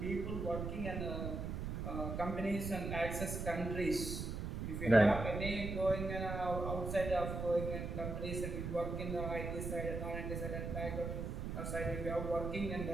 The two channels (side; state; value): right; noise; rumble, 4 dB below the sound